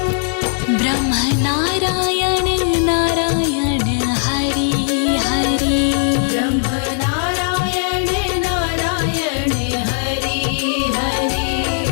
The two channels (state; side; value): silent; right; digital silence